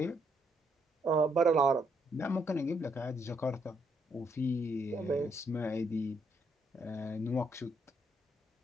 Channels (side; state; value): both; normal; correlation 0.73